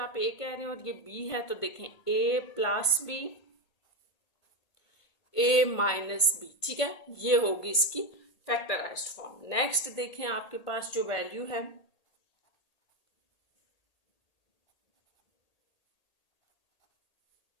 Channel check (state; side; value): late; right; 1.8 ms